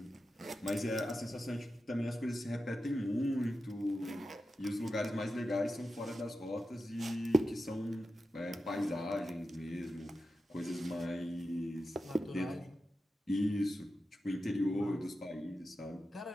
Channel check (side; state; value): both; normal; correlation 0.91